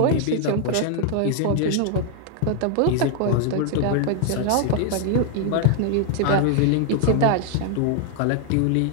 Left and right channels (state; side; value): different; both; correlation 0.00